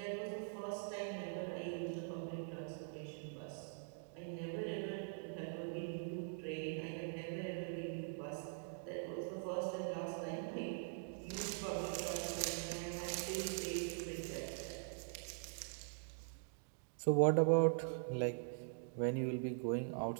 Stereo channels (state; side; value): silent; left; digital silence